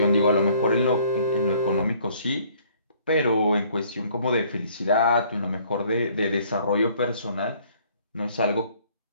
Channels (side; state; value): both; inverted; correlation -0.59